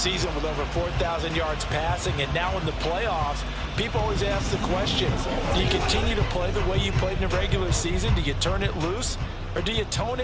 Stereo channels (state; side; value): identical; both; correlation 1.00